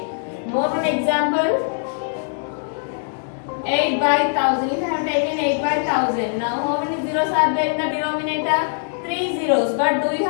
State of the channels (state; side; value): silent; right; 65 dB below the other